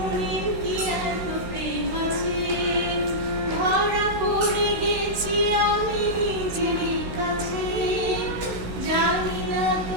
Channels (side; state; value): left; late; 16 ms